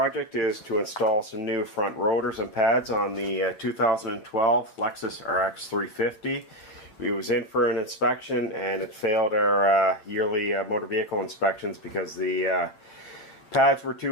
is to install some new front rotors and pads on the 2012 Lexus RX 350. It was in for an inspection and it failed our yearly motor vehicle inspections because the pads were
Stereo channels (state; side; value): late; right; 8.5 ms